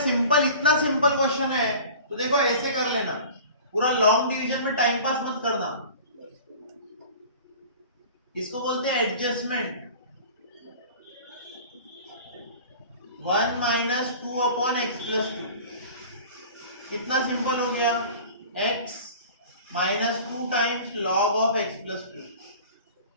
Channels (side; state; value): both; inverted; correlation -0.41